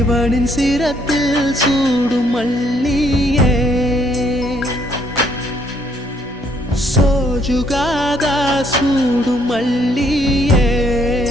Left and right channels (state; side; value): normal; both; correlation 0.68